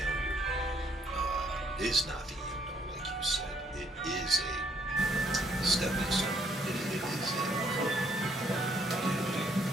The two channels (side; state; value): both; normal; correlation 0.68